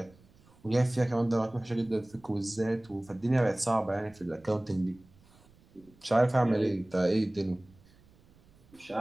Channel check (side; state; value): right; noise; rumble, 28 dB below the sound